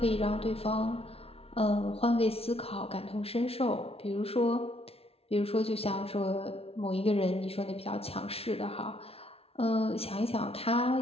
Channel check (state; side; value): late; right; 0.29 ms